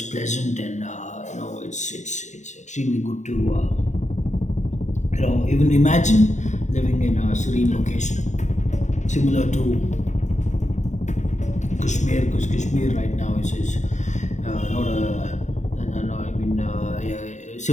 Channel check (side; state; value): right; late; 0.34 ms